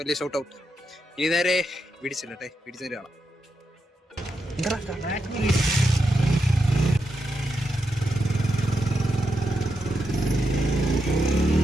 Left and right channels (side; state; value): both; normal; correlation 0.85